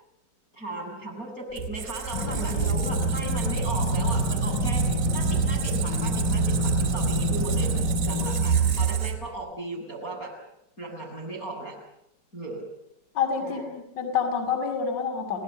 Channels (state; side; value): late; right; 3.9 ms